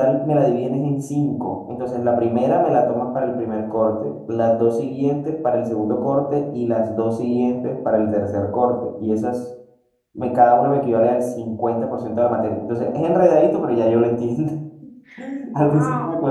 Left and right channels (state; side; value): identical; both; correlation 1.00